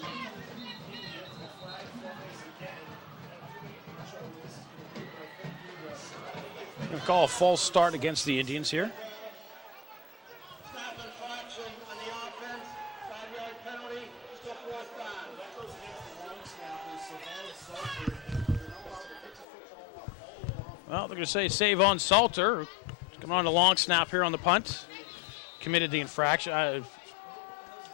Going to call a false start against the Indians here. Snap infraction on the offense, 5-yard penalty, still fourth down. Well, they're going to say save on Salter. Coming on the long snap here on the punt. Committed the infraction.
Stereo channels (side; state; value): right; drops out; at 19.5 s